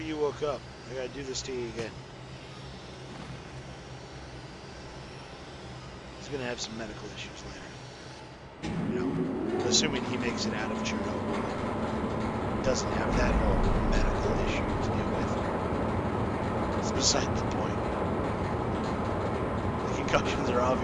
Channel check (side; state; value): both; identical; correlation 1.00